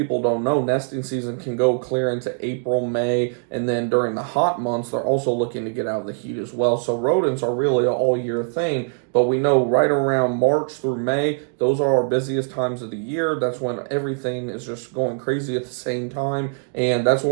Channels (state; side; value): silent; left; digital silence